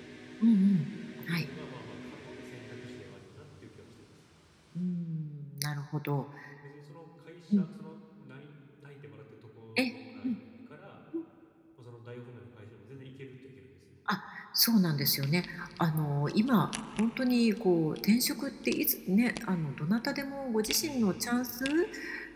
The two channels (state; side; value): identical; both; correlation 1.00